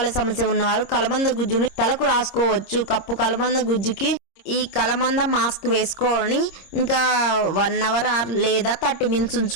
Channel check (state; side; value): late; right; 26 ms